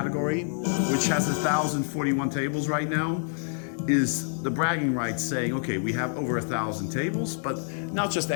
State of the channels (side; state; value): right; silent; 60 dB below the other